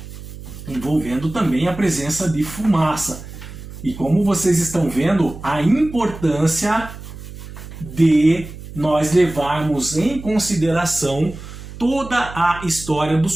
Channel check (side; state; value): right; noise; hum, 13 dB below the sound